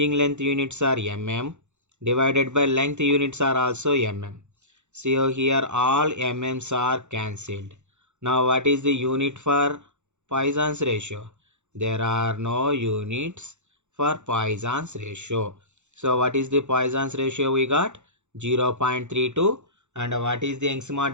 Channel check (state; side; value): late; left; 0.83 ms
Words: length units are mm divided by length units are also mm. So here all mm's are cancelled. Now what is the unit for Poisson's ratio? There are no units for Poisson's ratio. So what is the Poisson's ratio we got? 0.32. And what is the Young's